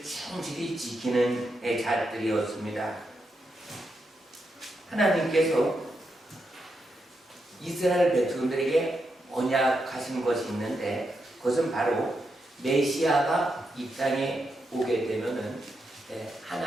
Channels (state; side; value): normal; both; correlation 0.84